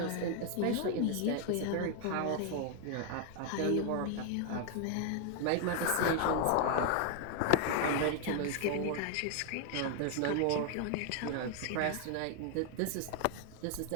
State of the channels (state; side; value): different; both; correlation 0.00